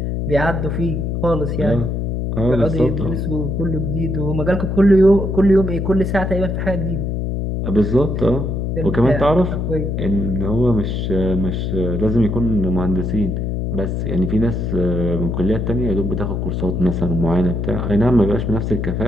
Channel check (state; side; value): noise; left; hum, 1 dB below the sound